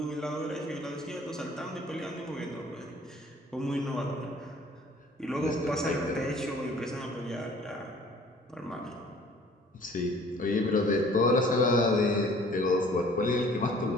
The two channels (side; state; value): both; normal; correlation 0.53